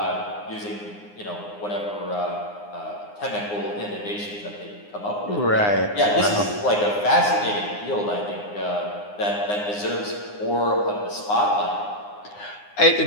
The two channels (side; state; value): right; late; 9.7 ms